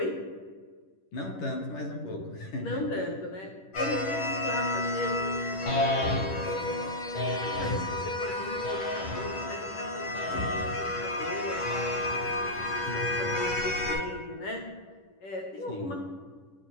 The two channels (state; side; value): late; right; 10 ms